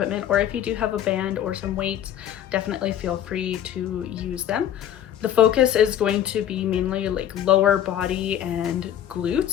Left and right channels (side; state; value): right; quieter; 10.6 dB